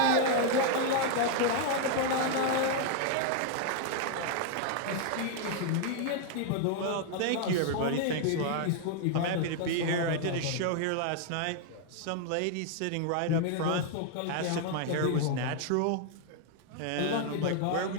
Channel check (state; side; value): different; both; correlation 0.00